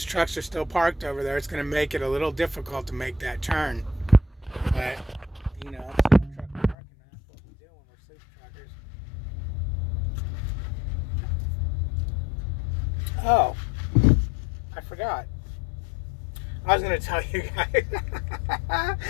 trucks are still parked over there, it's going to make it a little difficult to make that turn. But, you know, truck parking, that's what we do when we're sleep truckers. Oh, I forgot. I was going to tell you guys.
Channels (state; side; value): drops out; right; at 6.8 s